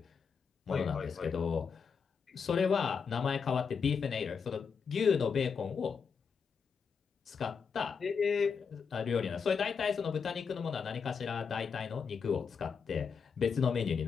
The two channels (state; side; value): quieter; right; 6.0 dB